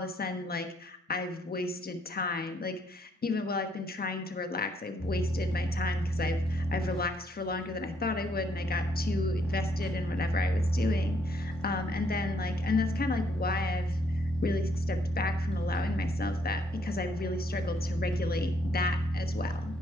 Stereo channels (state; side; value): normal; both; correlation 0.70